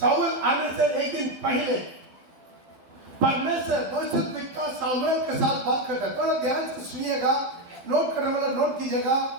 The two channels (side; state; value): left; late; 12 ms